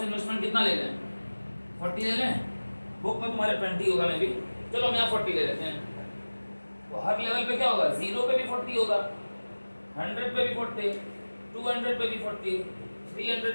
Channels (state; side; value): inverted; both; correlation -1.00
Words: इन्वेस्टमेंट कितना ले लें, 40 ले लें। बुक में तुम्हारे 20 होगा, मैं भी, चलो हम यहाँ 40 ले लेते हैं। तो हर लेवल पे क्या होगा, 0 पे भी 40 होगा, 100 पे भी 40, 200 पे भी 40,